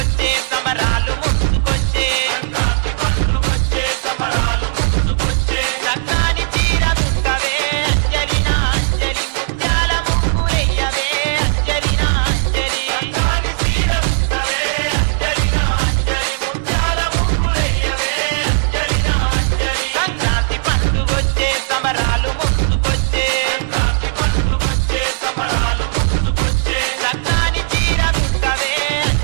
సమరాలు ముందుకొచ్చే Sankranti పండుగొచ్చే సమరాలు ముందుకొచ్చే చక్కని చీర దుట్టవే అంజలినా అంజలి ముత్యాల ముగ్గులెయ్యవే అంజలినా అంజలి చక్కని చీర దుట్టవే అంజలినా అంజలి ముత్యాల ముగ్గులెయ్యవే అంజలినా అంజలి సంక్రాంతి పండుగొచ్చే సమరాలు ముందుకొచ్చే సంక్రాంతి పండుగొచ్చే సమరాలు ముందుకొచ్చే చక్కని చీర దుట్టవే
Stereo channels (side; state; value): left; silent; digital silence